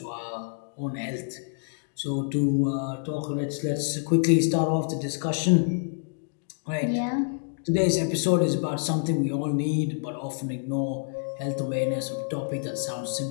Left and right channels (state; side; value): silent; right; digital silence